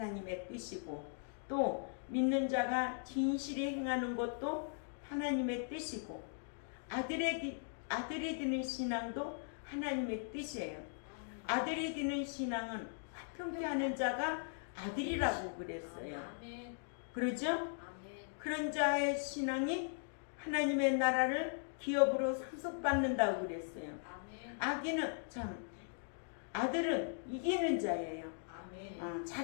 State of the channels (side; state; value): right; silent; digital silence